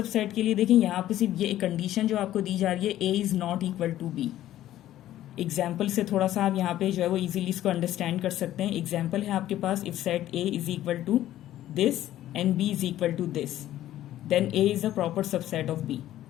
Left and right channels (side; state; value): right; quieter; 13.3 dB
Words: के लिए देखिए यहाँ पे सिर्फ ये एक कंडीशन जो आपको दी जा रही है, A is not equal to B. Example से थोड़ा सा आप यहाँ पे जो है वो इजीली इसको अंडरस्टैंड कर सकते हैं। एग्जाम्पल है आपके पास, if set A is equal to this and B is equal to this, then A is a proper subset of B.